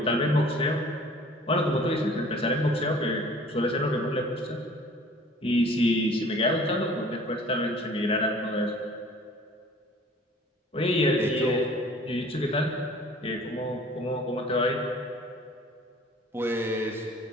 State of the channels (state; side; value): normal; both; correlation 0.50